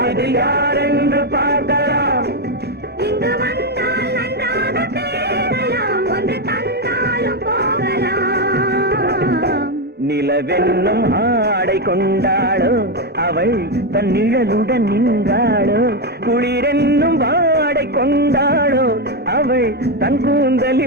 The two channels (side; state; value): both; normal; correlation 0.07